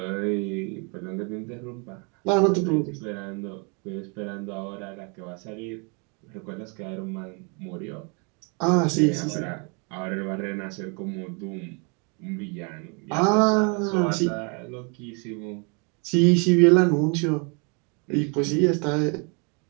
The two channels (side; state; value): left; quieter; 34.5 dB